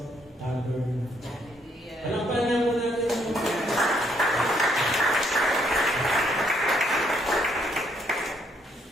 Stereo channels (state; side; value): normal; both; correlation 0.70